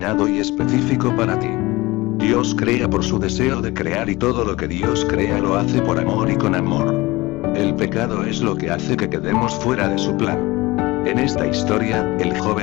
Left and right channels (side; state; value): right; quieter; 21.0 dB